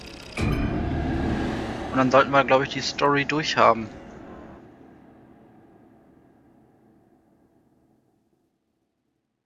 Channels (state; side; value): identical; both; correlation 1.00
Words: Und dann sollten wir, glaube ich, die Story durchhaben.